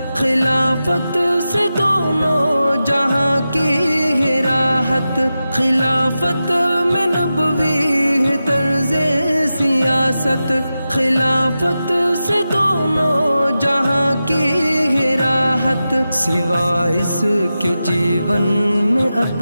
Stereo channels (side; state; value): both; inverted; correlation -0.92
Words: خلافت سے دونوں جہاں کی ہے راحت، خلافت میں نبوی ہے طرز سیاست، خلافت سے دونوں جہاں کی ہے راحت، سوائے اس کے جیون میں